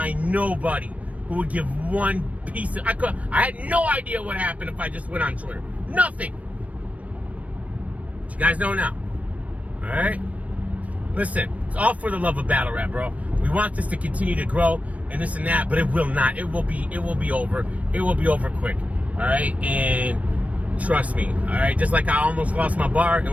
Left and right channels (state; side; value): late; left; 0.067 ms